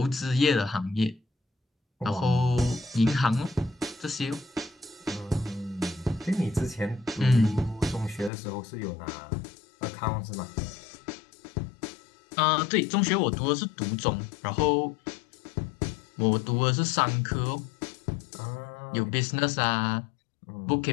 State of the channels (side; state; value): right; drops out; at 8.3 s